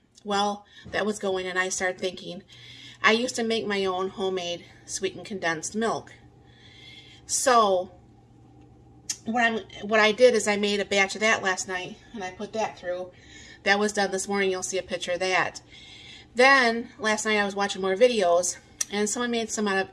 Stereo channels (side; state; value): both; identical; correlation 1.00